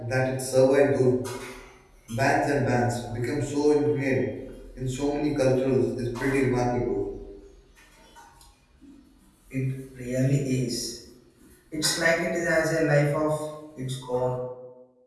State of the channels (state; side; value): identical; both; correlation 1.00